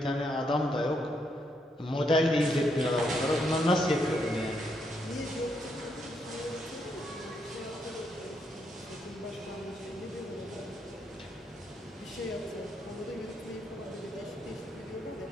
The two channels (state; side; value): normal; both; correlation 0.77